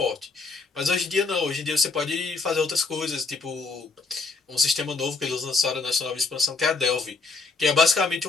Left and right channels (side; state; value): right; quieter; 4.1 dB